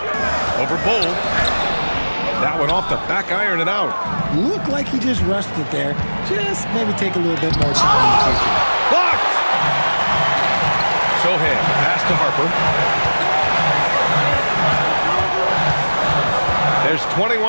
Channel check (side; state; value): both; inverted; correlation -1.00